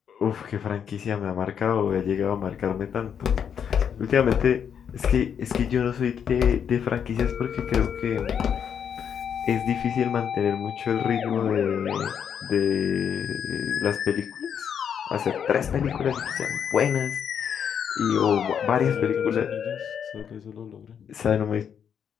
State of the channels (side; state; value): right; quieter; 8.0 dB